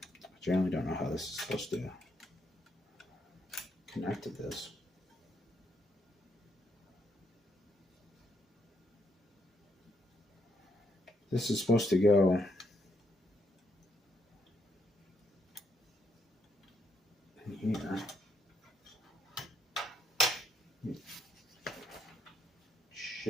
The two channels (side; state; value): both; normal; correlation 0.75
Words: I generally don't know how this is supposed to connect to this. This is supposed to go